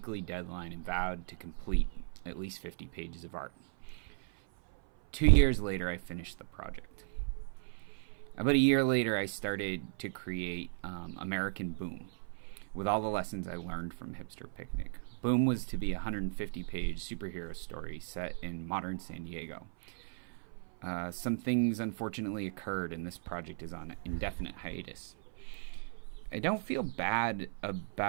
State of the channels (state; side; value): silent; left; 54 dB below the other